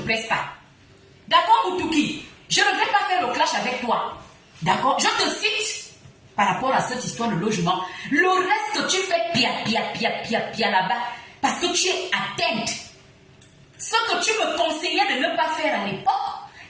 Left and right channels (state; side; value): identical; both; correlation 1.00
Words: pas. D'accord, Moutouki? Je ne vais pas faire le clash avec toi. D'accord? Je te cite par rapport à cette histoire de logement. Le reste, tu fais pia là-bas parce que tu es atteinte. Ce que tu me conseillais de ne pas faire à l'époque,